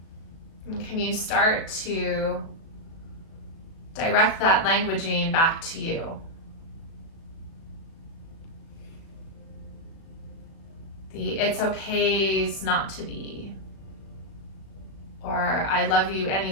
And can you start to direct that languaging back to you? The it's okay's not to be, or I love you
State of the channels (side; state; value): right; late; 36 ms